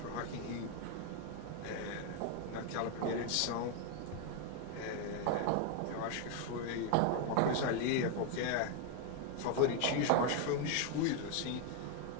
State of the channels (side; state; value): both; different; correlation 0.01